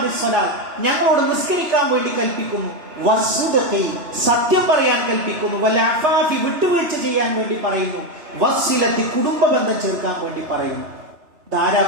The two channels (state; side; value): late; left; 2.9 ms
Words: ഞങ്ങളോട് നിസ്കരിക്കാൻ വേണ്ടി കൽപ്പിക്കുന്നു, വസ്സുദഖി, സത്യം പറയാൻ കൽപ്പിക്കുന്നു, വൽഅഫാഫി, വിട്ടുവീഴ്ച ചെയ്യാൻ വേണ്ടി പറയുന്നു, വസ്സിലത്തി, കുടുംബ ബന്ധം ചേർക്കാൻ വേണ്ടി പറയുന്നു. ധാരാ